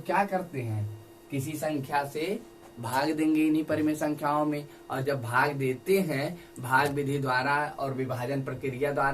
क्या करते हैं, किसी संख्या से भाग देंगे इन्हीं परिमेय संख्याओं में, और जब भाग देते हैं भाग विधि द्वारा और विभाजन प्रक्रिया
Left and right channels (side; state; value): both; identical; correlation 1.00